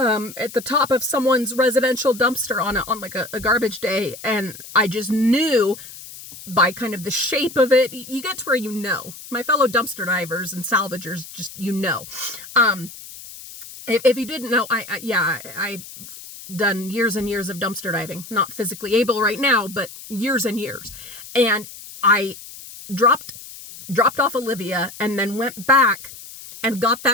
the top of someone's residential dumpster on like a garbage day. And I just knew by kind of the shape of it, you get to where my fellow dumpster divers and salvagers, just if you didn't know, I've done years and years of dumpster diving, not physically able right now, but years and years. And I dropped off Olivia and then went back and got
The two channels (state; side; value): noise; left; hiss, 15 dB below the sound